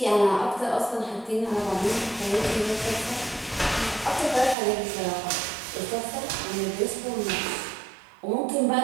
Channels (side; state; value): left; drops out; at 4.5 s